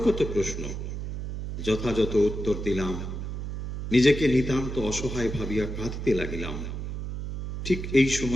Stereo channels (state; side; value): noise; right; hum, 6 dB below the sound